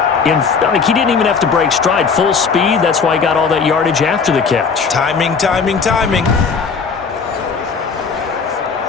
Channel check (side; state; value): right; quieter; 5.4 dB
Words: he didn't even have to break stride. Full speed, that's why he got all that yardage after the catch. Timing, timing, timing.